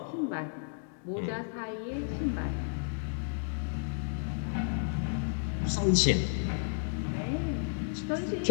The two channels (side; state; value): right; silent; digital silence